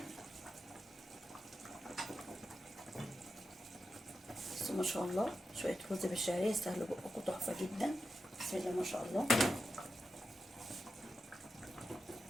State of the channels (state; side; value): normal; both; correlation 0.89